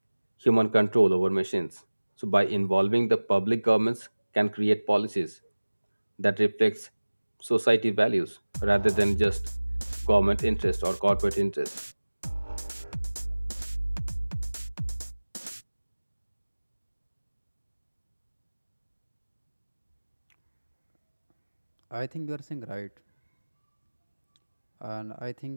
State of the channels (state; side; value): inverted; both; correlation -1.00